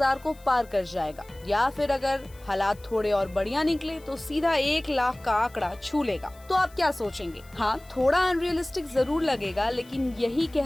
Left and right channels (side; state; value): left; noise; hiss, 26 dB below the sound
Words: को पार कर जाएगा, या फिर अगर हालात थोड़े और बढ़िया निकले तो सीधा 1 लाख का आंकड़ा छू लेगा। तो आप क्या सोचेंगे? हाँ, थोड़ा अनरियलिस्टिक जरूर लगेगा, लेकिन यही